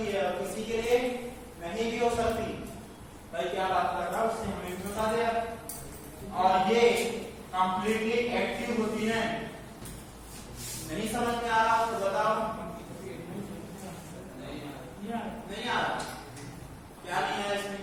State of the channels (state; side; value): identical; both; correlation 1.00